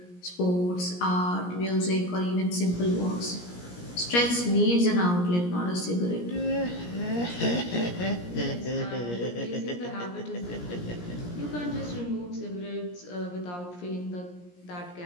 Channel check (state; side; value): late; right; 17 ms